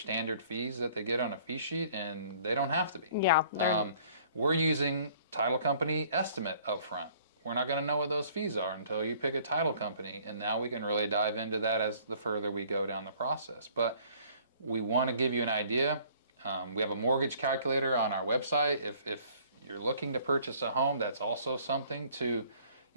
fees that they get on a fee sheet, and they don't have to be. Yeah. We're using title company estimate up front. We're not going to know what those fees are until you pick a title company, and now we can really dive into that as the further we go down the process. But we want to give you an idea. We have a mortgage calculator on our website. If you're looking to purchase a home, that's also something to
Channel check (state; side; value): inverted; both; correlation -0.57